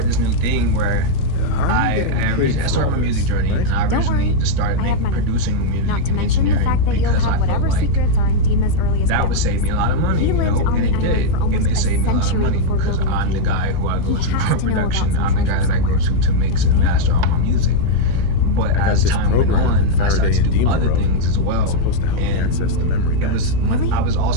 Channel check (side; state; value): both; different; correlation -0.01